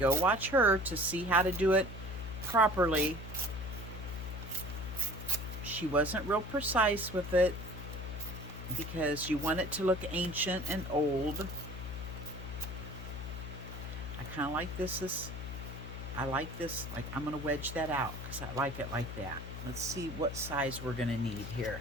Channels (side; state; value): left; noise; hum, 8 dB below the sound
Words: watch her to see how to do it properly. She wasn't real precise with it because you want it to look ancient and old. I kind of like this. I like this, like I'm going to wedge that out because I like it like that. Let's see what size we're going to need here.